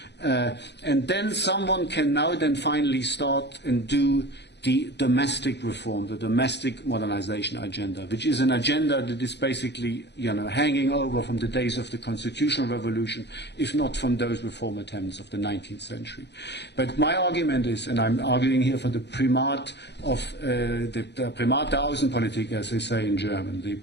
And then someone can now then finally start and do the domestic reform, the domestic modernization agenda, which is an agenda that is basically, hanging over from the days of the constitutional revolution, if not from those reform attempts of the 19th century. But my argument is, and I'm arguing here for the primat of the Primat der Außenpolitik, as they say in German, the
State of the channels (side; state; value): right; late; 0.50 ms